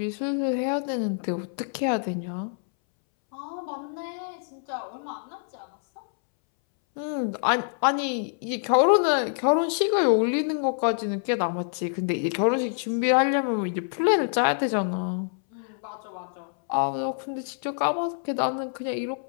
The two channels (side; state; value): right; silent; 61 dB below the other